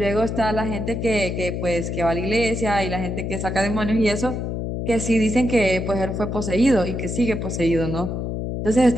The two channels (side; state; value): left; noise; hum, 3 dB below the sound